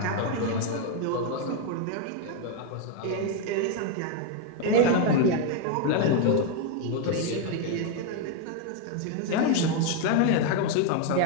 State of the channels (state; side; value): different; both; correlation 0.01